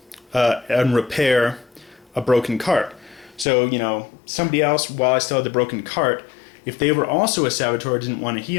and repair a broken cart. So, somebody else, while I still had the broken cart, if they were also a saboteur, didn't want to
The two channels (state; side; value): drops out; right; at 3.5 s